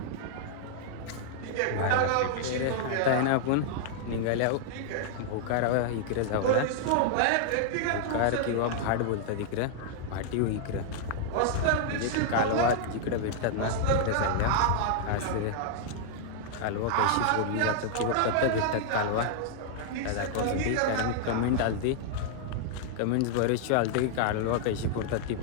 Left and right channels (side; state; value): both; different; correlation -0.01